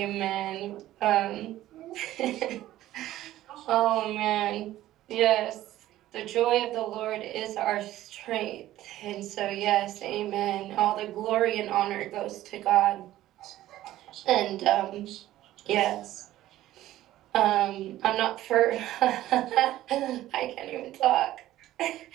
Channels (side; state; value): left; quieter; 14.5 dB